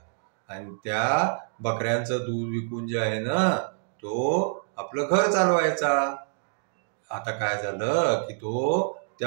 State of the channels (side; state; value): left; silent; digital silence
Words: आणि त्या बकऱ्यांचं दूध विकून जे आहे ना, तो आपलं घर चालवायचा. आता काय झालं की तो त्या